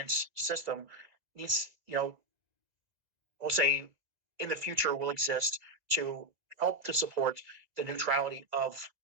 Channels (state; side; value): late; left; 2.0 ms